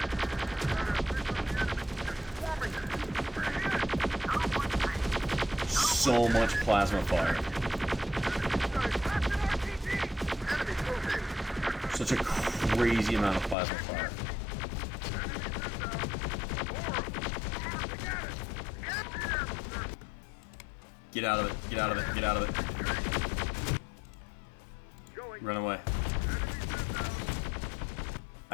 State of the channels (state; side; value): drops out; right; at 13.6 s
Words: So much plasma fire. Such a crazy amount of plasma fire. Get out of it, get out of it, get out of it. Run away.